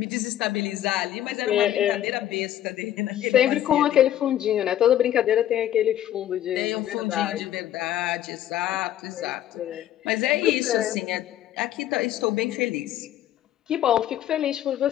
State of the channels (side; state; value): right; quieter; 12.0 dB